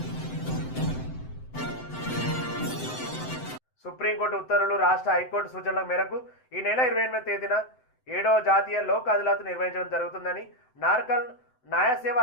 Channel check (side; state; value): right; late; 7.8 ms